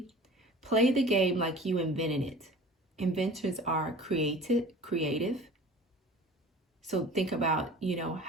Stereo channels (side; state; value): both; normal; correlation 0.42